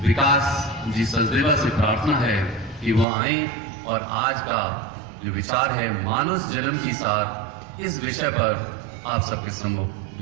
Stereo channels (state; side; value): drops out; left; at 3.1 s